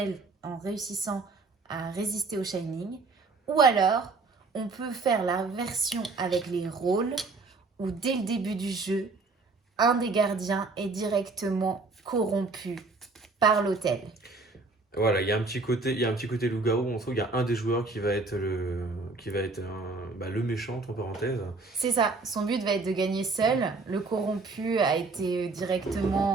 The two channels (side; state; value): left; quieter; 3.8 dB